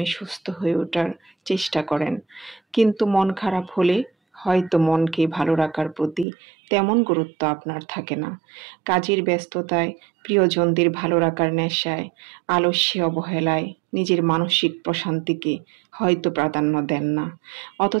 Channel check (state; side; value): drops out; left; at 6.2 s